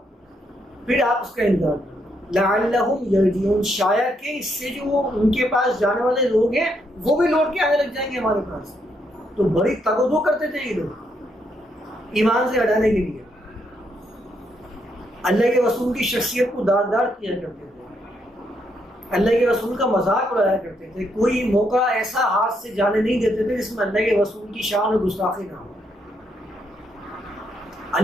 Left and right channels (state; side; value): normal; both; correlation 0.76